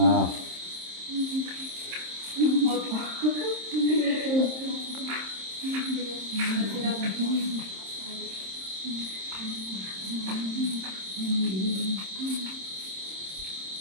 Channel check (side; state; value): left; late; 26 ms